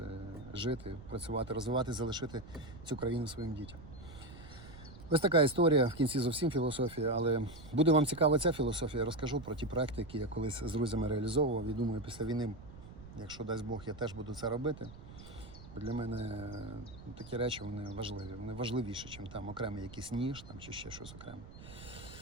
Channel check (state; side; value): noise; right; rumble, 16 dB below the sound